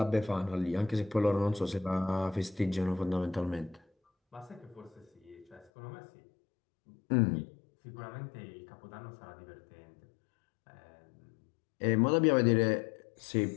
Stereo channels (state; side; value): drops out; right; at 5.7 s